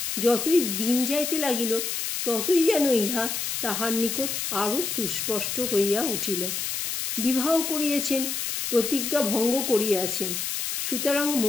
যতই দিন যাইতে লাগিল ততই যেন ইহা তাহার নিকট আরও সুস্পষ্ট হইয়া উঠিল। বিবাহ করিয়াছেন, প্রতিজ্ঞা ভঙ্গ করিয়াছেন, সুতরাং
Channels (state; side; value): noise; left; hiss, 2 dB below the sound